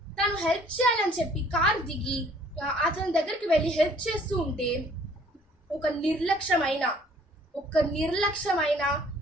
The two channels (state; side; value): normal; both; correlation 0.57